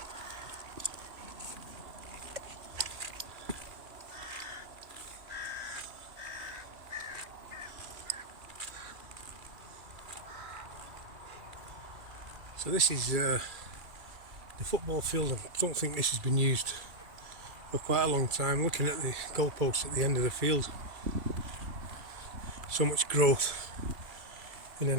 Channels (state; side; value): late; left; 2.3 ms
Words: So this is the football field. I don't think this has been used for quite a long time. Looking at the goalposts at the end of the field, so much growth in